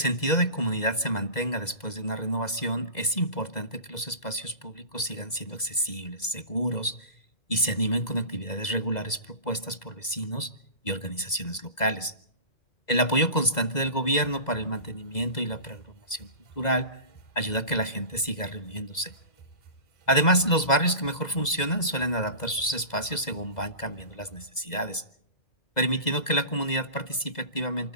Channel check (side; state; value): right; late; 2.0 ms